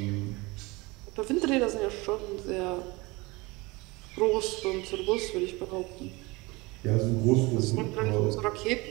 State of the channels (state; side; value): quieter; left; 24.0 dB